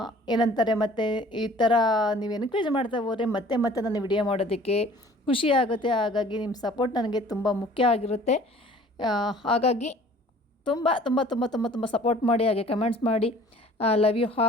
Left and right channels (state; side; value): normal; both; correlation 0.50